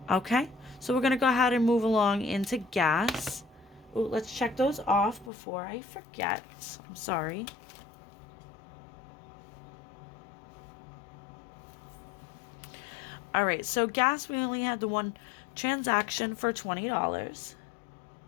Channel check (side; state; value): right; drops out; at 5.3 s